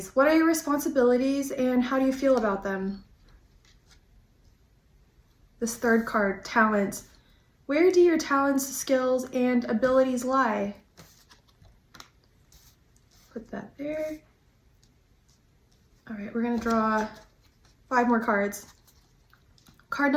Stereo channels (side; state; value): both; identical; correlation 1.00